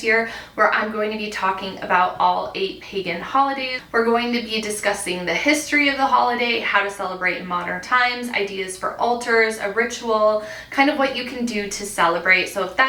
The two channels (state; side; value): identical; both; correlation 1.00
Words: year where I'm going to be talking about all 8 pagan holidays. We're going to be discussing the history of the holiday, how to celebrate in modern times, ideas for altars, a ritual, kind of what you can do to celebrate. So if